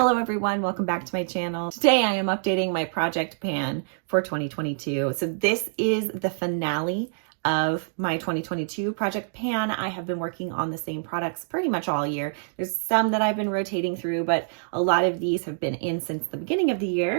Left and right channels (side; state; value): left; silent; digital silence